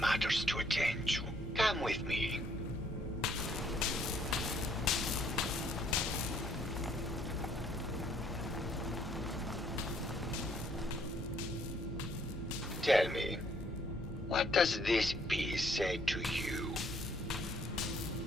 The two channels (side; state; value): both; normal; correlation 0.65